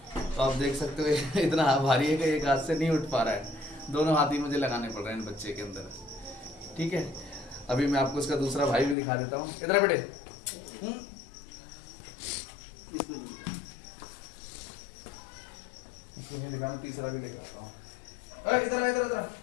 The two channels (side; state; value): right; drops out; at 9.0 s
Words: तो आप देख सकते हो इतना भारी है कि एक हाथ से नहीं उठ पा रहा है, दोनों हाथ ही मुझे लगाने पड़ रहे हैं बच्चे के अंदर। ठीक है, अभी मैं आपको इसका दूसरा भाई भी दिखा देता हूँ। इधर बेटे, इसको नहीं दिखाना, तीसरा भी लेकर आता हूँ। इधर इधर इधर